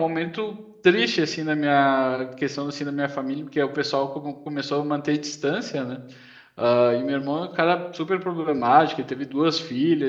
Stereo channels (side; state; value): both; identical; correlation 1.00